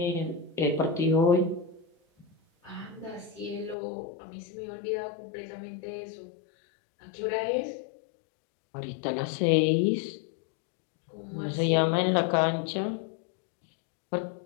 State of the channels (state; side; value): drops out; right; at 3.8 s